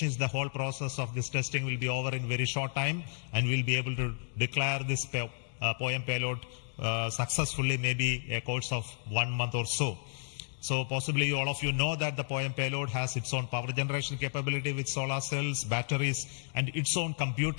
is the whole process of this testing will be over in very short time, and we'll be able to declare this POEM payload successfully, maybe a course of 1 month or so. So possibly all of you know that the POEM payload has its own power generation capability with solar cells, batteries, and its own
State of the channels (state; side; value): silent; right; digital silence